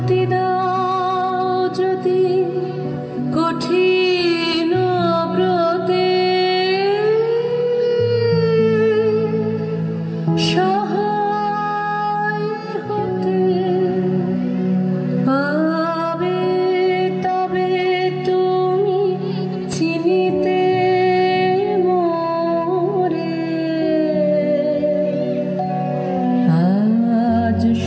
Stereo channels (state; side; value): identical; both; correlation 1.00